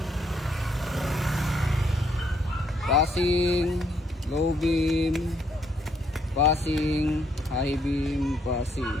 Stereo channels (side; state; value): both; normal; correlation 0.71